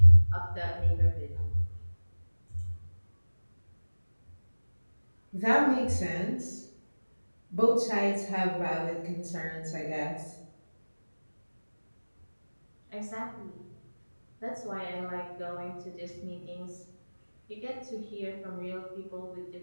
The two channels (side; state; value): both; inverted; correlation -1.00